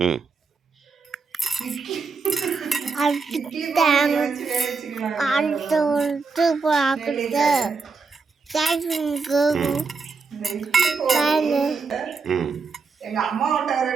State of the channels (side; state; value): left; quieter; 4.7 dB